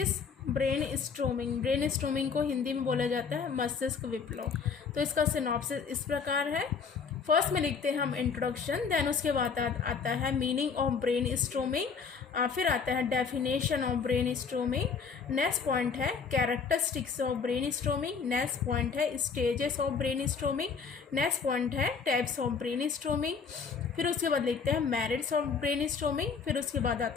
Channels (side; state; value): right; quieter; 5.7 dB